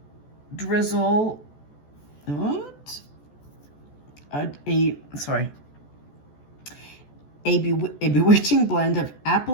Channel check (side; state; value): right; late; 14 ms